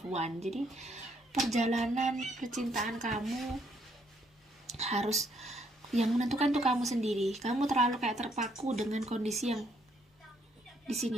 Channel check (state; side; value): normal; both; correlation 0.70